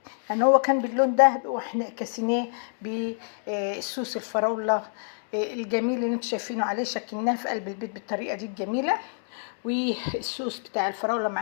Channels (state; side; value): silent; right; digital silence